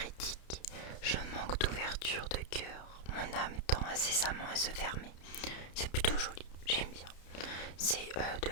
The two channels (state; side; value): late; right; 31 ms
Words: je manque d'ouverture de cœur. Mon âme tend incessamment à se fermer. C'est plutôt joli, j'aime bien. C'est de